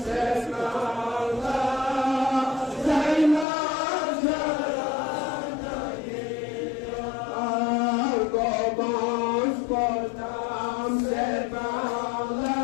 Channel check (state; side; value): drops out; right; at 3.5 s